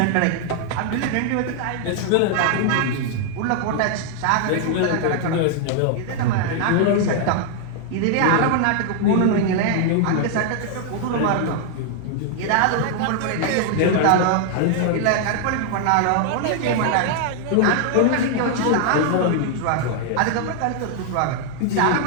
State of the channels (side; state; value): both; different; correlation 0.00